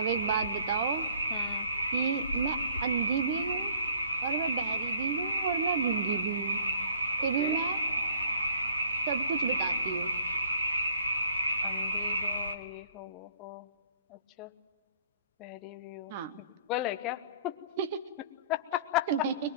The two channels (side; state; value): both; inverted; correlation -0.57